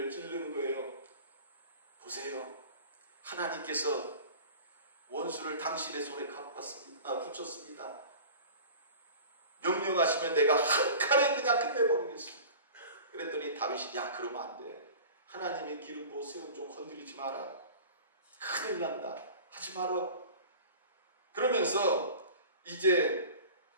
찌르는 거예요. 보세요. 하나님께서 원수를 당신의 손에 붙였습니다. 명령하시면 내가 한 칼에 그냥 끝내버리겠습니다. 그랬더니 다윗이, 야, 그러면 안 돼. 하나님이 기름 부어 세운 좀 건드리지 마라. 큰일 난다. 하지 마라. 그러면서 이제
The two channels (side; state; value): both; inverted; correlation -0.39